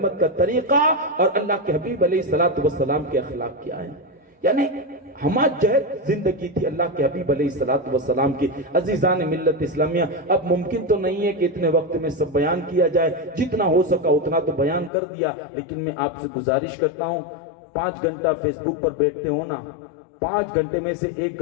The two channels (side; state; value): right; drops out; at 14.9 s